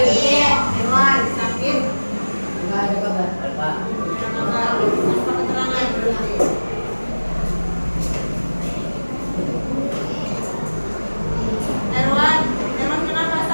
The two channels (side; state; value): both; inverted; correlation -1.00